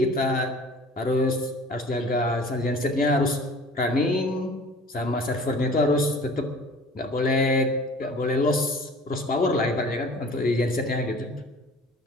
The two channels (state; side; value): normal; both; correlation 0.46